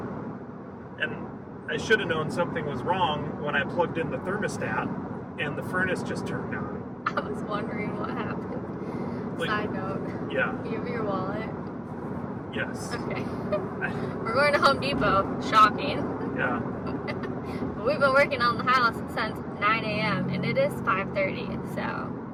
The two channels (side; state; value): both; identical; correlation 1.00